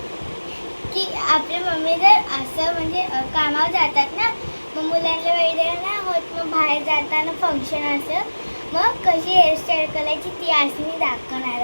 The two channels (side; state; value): both; inverted; correlation -1.00